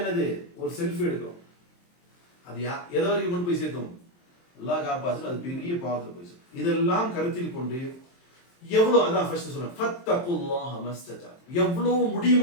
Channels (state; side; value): late; right; 23 ms